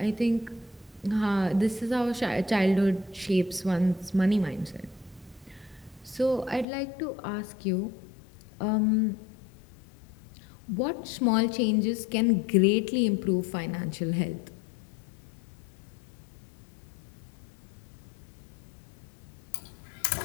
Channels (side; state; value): right; drops out; at 6.7 s